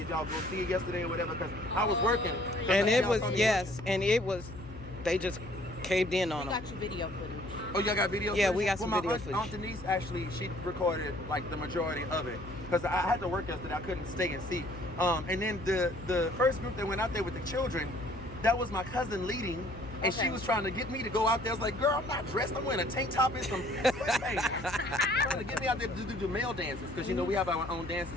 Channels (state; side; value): noise; left; hum, 15 dB below the sound